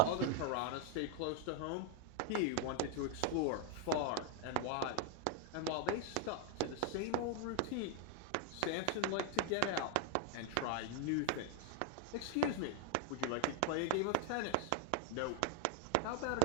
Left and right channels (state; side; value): different; both; correlation 0.00